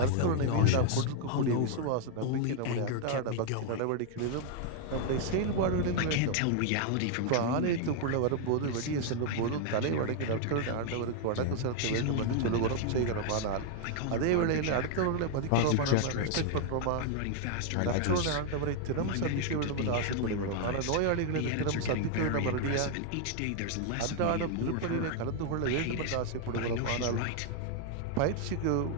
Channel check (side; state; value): both; different; correlation 0.00